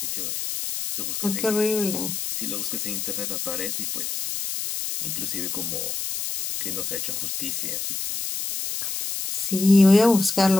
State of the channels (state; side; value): noise; left; hiss, 3 dB below the sound